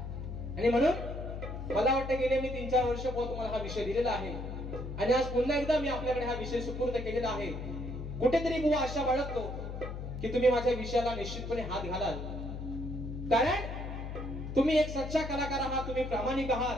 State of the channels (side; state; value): left; noise; hum, 7 dB below the sound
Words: आणि म्हणून मला वाटतं गेले मी 3-4 वर्ष बुवा तुम्हाला हा विषय दिलेला आहे आणि आज पुन्हा एकदा मी आपल्याकडे हा विषय सुपूर्द केलेला आहे. कुठेतरी बुवा आशा बाळगतो की तुम्ही माझ्या विषयाला निश्चितपणे हात घालाल, कारण तुम्ही एक सच्चा कलाकार आहात, तुम्ही प्रामाणिक आहात.